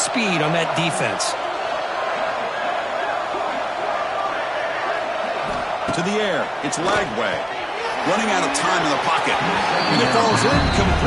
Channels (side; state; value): both; identical; correlation 1.00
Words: on that defense. To the air, it's Lagway. Running out of time in the pocket. And it falls